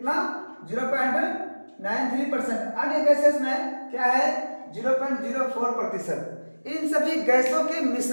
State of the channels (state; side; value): inverted; both; correlation -1.00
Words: 0.93%। अन्य गैसेस में क्या है? 0.04%। इन सभी गैसों के